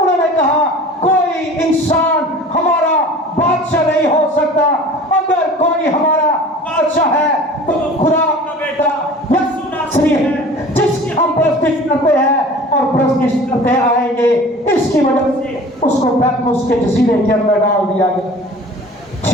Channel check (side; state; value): both; normal; correlation 0.42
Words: نے کہا کوئی انسان ہمارا بادشاہ نہیں ہو سکتا. اگر کوئی ہمارا بادشاہ ہے تو خدا کا بیٹا یسوع ناصری ہے جس کی ہم پرستش کرتے ہیں اور پرستش کرتے آئیں گے. اس کی وجہ سے اس کو پیتموس کے جزیرے کے اندر ڈال دیا گیا.